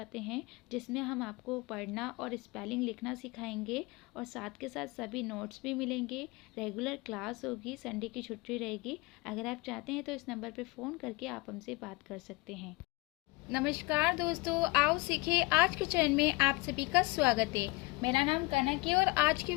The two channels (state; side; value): quieter; right; 23.8 dB